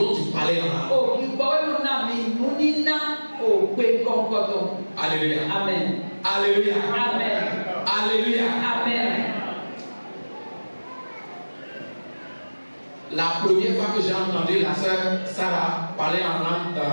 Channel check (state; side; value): inverted; both; correlation -1.00